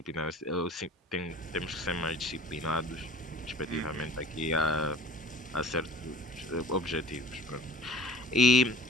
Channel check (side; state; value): both; normal; correlation 0.46